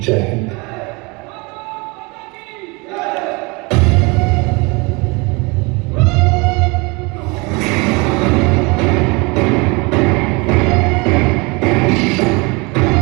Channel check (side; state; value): left; quieter; 27.7 dB